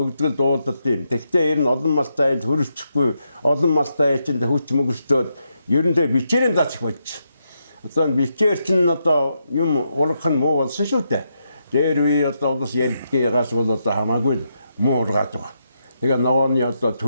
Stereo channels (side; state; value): both; inverted; correlation -0.82